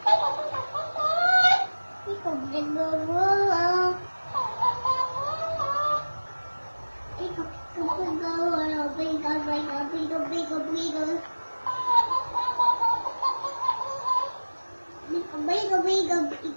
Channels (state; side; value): inverted; both; correlation -1.00